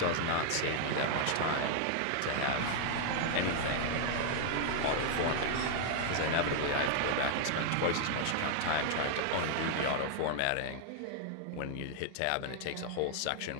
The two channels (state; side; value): different; both; correlation 0.00